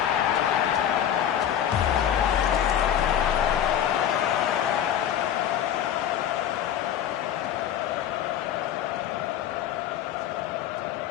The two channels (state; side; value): quieter; right; 10.0 dB